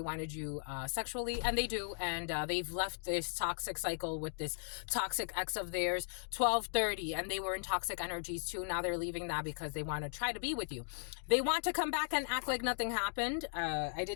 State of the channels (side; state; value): right; silent; digital silence